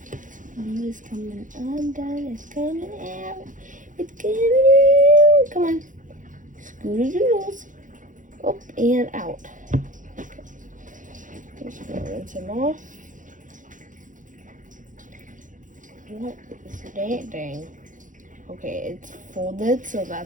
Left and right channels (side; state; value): left; late; 0.38 ms